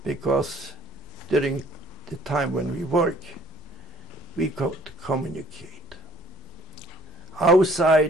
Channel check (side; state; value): both; normal; correlation 0.57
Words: because during the time when we work, we could communicate.